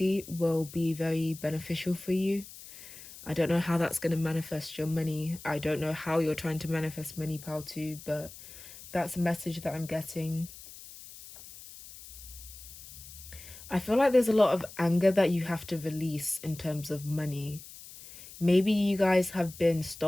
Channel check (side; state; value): left; noise; hiss, 16 dB below the sound